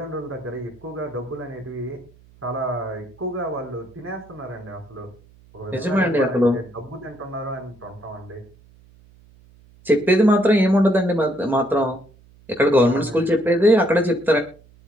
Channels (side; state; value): right; noise; hum, 27 dB below the sound